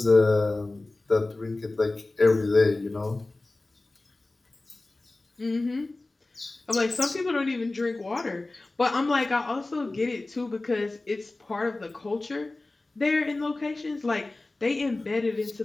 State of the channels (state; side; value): quieter; right; 3.0 dB